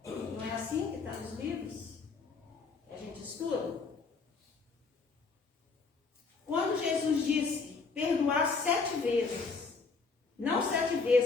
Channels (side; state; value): right; quieter; 4.5 dB